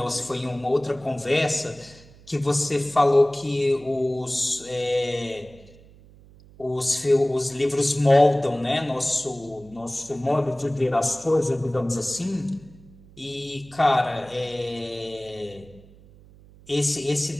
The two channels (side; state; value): right; noise; hum, 24 dB below the sound